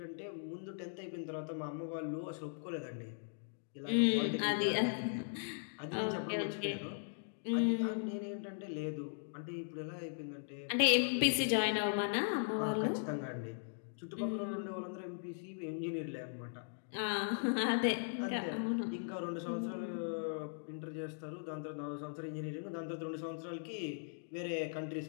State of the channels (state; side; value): silent; right; digital silence